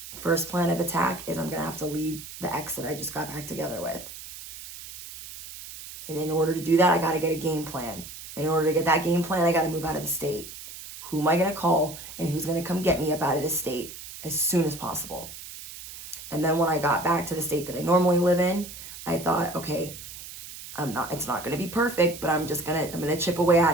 first plan of attack is I'm going to have to leave the ex that I just got back together with. And in order to do that, I got to get a game plan. In order to get that game plan, I got to move out of the state. who am I going to call and who's going to come get me up out of this state as soon as possible. And then when I got back to the state that I normally live in, I thought, okay, it's not going to be perfect, but I'm going to chip away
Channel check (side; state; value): right; noise; hiss, 13 dB below the sound